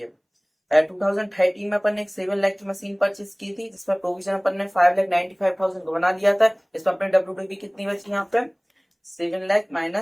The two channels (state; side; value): identical; both; correlation 1.00